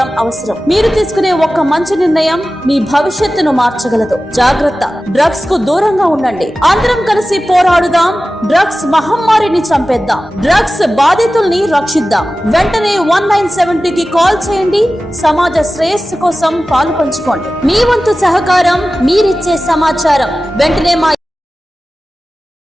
అవసరం. మీరు తీసుకునే ఒక్క మంచి నిర్ణయం మీ భవిష్యత్తును మార్చగలదు. జాగ్రత్త, డ్రగ్స్ కు దూరంగా ఉండండి. అందరం కలిసి పోరాడుదాం, డ్రగ్స్ మహమ్మారిని చంపేద్దాం, డ్రగ్స్ బాధితుల్ని రక్షిద్దాం. వెంటనే 1970 కి కాల్ చేయండి. సమాజ శ్రేయస్సు కోసం పాలు పంచుకోండి. మీ వంతు సహకారం, మీరిచ్చే సమాచారం వెంటనే మా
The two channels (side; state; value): both; normal; correlation 0.95